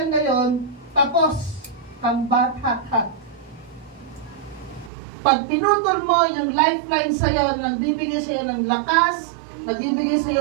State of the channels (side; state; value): left; drops out; at 4.9 s